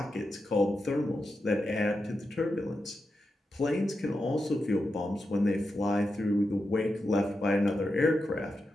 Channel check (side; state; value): both; normal; correlation 0.88